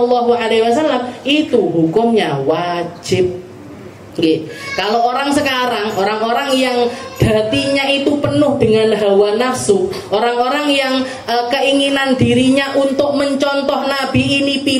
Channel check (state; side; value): identical; both; correlation 1.00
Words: itu hukumnya wajib. Kalau orang sekarang, orang-orang yang hatinya itu penuh dengan hawa nafsu, orang-orang yang keinginan dirinya untuk mencontoh Nabi ini